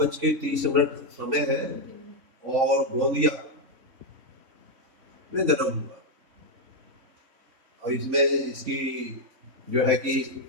समय है, और गोंदिया में जन्म हुआ। और इसमें इसकी जो है कि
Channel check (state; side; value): late; left; 3.5 ms